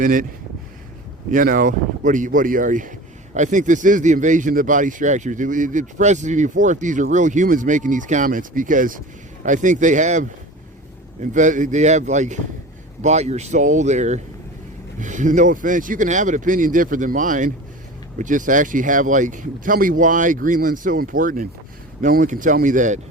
it. You know, what are you? I think this is the invasion of the body structures. It impresses me before if these are real humans making these comments, because I think they have like bought your soul there. No offense, you can have an opinion different than mine, but just actually have like, tell me why Greenland's so important. No one can tell me that.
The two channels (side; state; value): both; normal; correlation 0.35